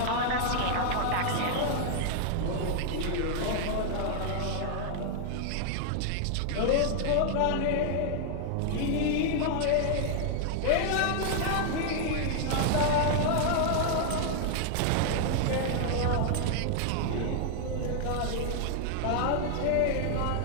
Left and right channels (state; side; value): different; both; correlation 0.00